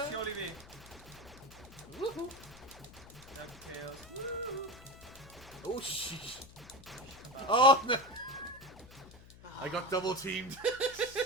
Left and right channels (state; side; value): noise; left; hum, 20 dB below the sound